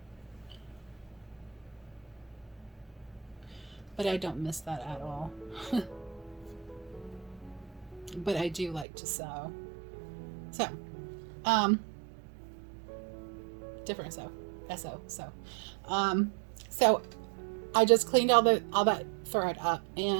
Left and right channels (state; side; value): drops out; left; at 8.8 s